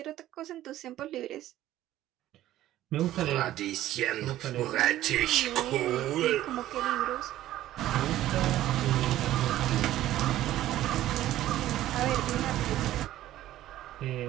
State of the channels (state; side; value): quieter; left; 13.9 dB